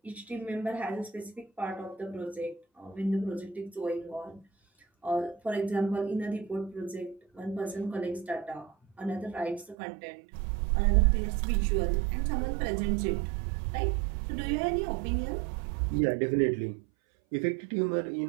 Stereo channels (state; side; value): drops out; left; at 9.8 s